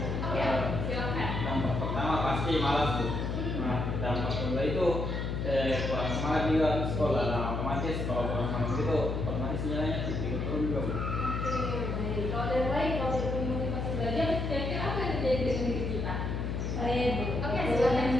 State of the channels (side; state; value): left; noise; hum, 2 dB below the sound